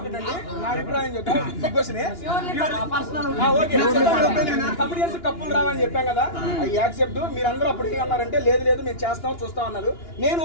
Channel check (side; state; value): right; late; 2.9 ms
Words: కప్పులు రావని చెప్పాం కదా, అవి యాక్సెప్ట్. మీరందరూ అప్పుడు అన్నారంటే లేదు లేదు మేము చేస్తాం చూస్తాం అన్నారు. నేను